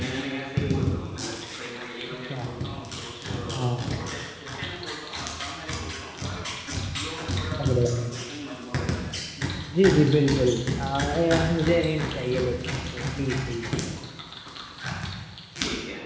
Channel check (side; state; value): both; identical; correlation 1.00